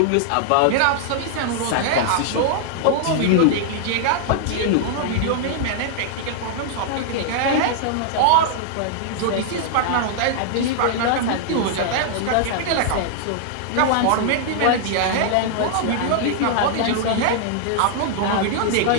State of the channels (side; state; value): both; different; correlation -0.01